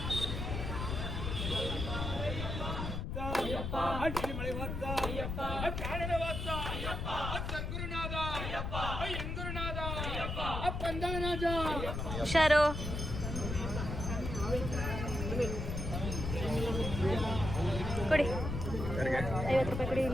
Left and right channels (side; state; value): left; noise; rumble, 4 dB below the sound